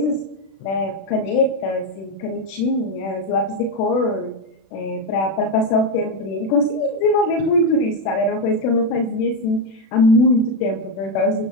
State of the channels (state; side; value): late; right; 36 ms